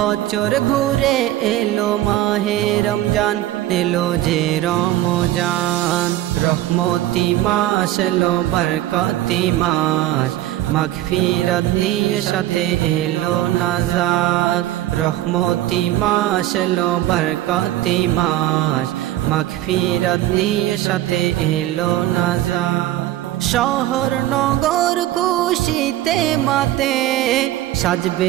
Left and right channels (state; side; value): quieter; left; 14.3 dB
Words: ঘুরে এলো মাহে রমজান, এলো যে রমজান। রহমতি মাস এলো বরকতি মাস, মাগফিরাত নিয়ে সাথে এলো নাজাত। রহমতি মাস এলো বরকতি মাস, মাগফিরাত নিয়ে সাথে এলো নাজাত। শহর নগর খুশিতে মাতে,